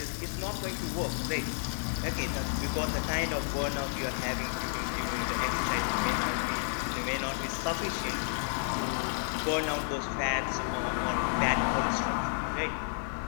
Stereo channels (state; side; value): silent; right; digital silence